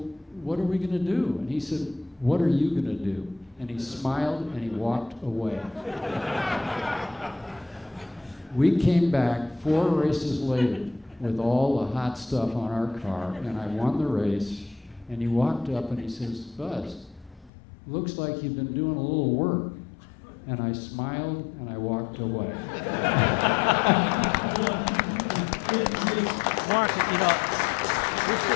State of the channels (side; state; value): right; drops out; at 17.5 s